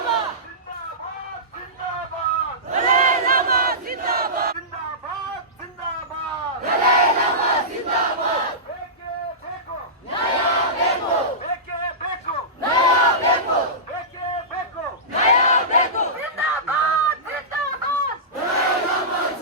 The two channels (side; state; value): both; normal; correlation -0.19